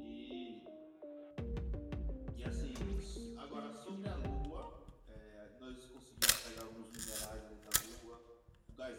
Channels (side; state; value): both; identical; correlation 1.00